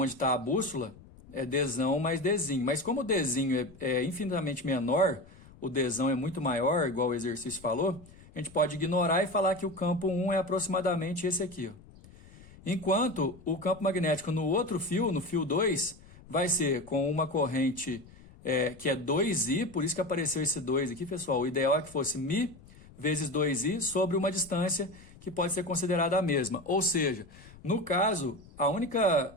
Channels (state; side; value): noise; left; rumble, 22 dB below the sound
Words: está a bússola é Dzão mais Dzinho. Mas como o Dzinho é infinitamente menor, o Dzão é muito maior, igual o exercício falou, a gente pode ignorar e falar que o campo 1 é aproximadamente esse aqui, ó. Enquanto o campo magnético no outro fio, no fio 2, vai ser com uma corrente que é 2I, por isso que apareceu esse 2 aqui, pessoal. O ideal é que fosse Mi vezes 2I sobre uma distância que pode ser considerada a mesma. Ou seja, no caso,